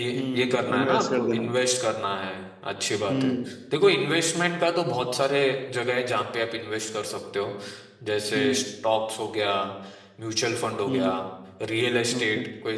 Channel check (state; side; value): identical; both; correlation 1.00